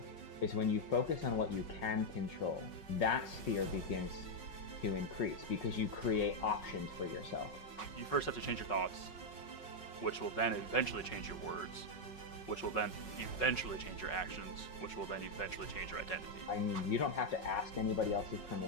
is when you focus on what you can control, that sphere begins to increase because you create options for yourself. You first have to change your thoughts, which will then eventually change your words, which will then eventually change your actions, which will then eventually change your identity. I mean, you don't have to ask anybody else's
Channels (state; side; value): late; right; 5.4 ms